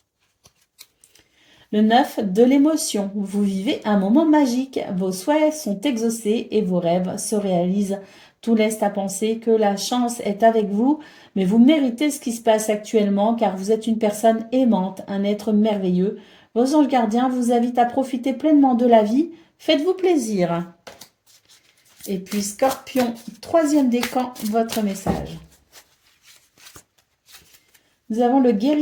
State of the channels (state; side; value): identical; both; correlation 1.00